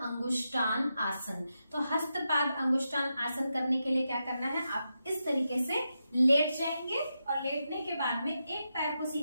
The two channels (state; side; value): inverted; both; correlation -0.87